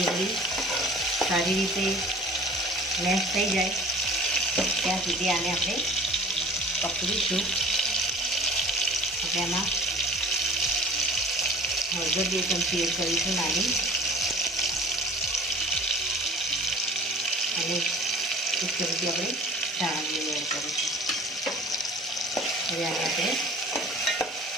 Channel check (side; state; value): both; normal; correlation 0.45